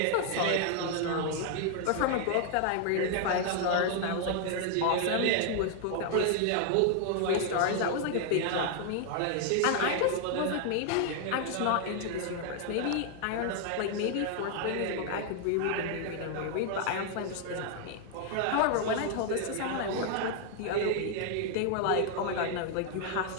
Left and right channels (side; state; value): both; different; correlation 0.00